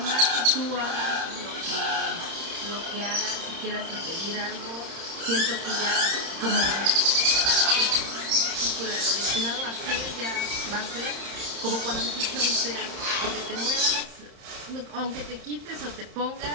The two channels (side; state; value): left; late; 31 ms